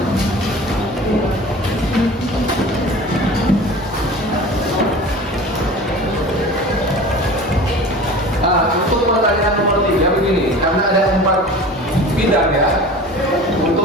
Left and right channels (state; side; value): normal; both; correlation 0.39